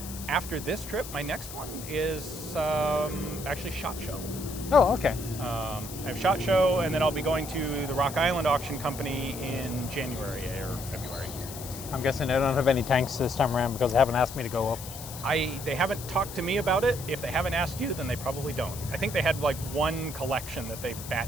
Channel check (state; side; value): noise; left; hiss, 12 dB below the sound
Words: After this trip, my next one is actually SHOT Show. Oh, okay. I have SHOT Show, and then I'll be going to the Rock Island Auction Company in January or February. I'm guessing they don't have any tanks this time around because they haven't asked me to go up. They haven't talked to me about it. If they haven't asked you, then they probably don't. I think they had like one collection that they